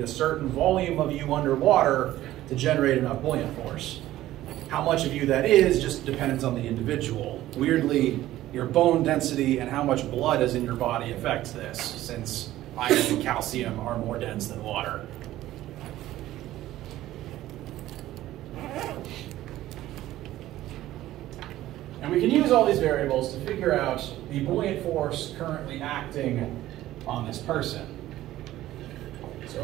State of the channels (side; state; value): left; quieter; 14.7 dB